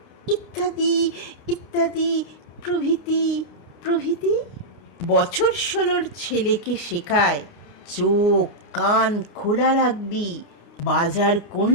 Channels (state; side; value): late; right; 29 ms